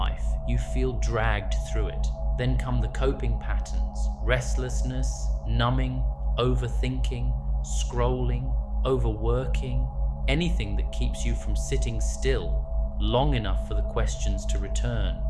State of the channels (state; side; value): identical; both; correlation 1.00